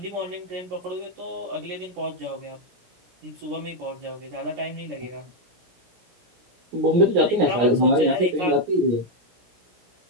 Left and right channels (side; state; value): left; late; 17 ms